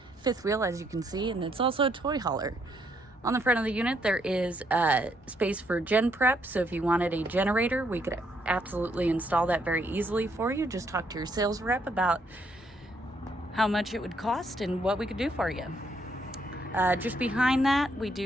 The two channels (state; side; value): normal; both; correlation 0.72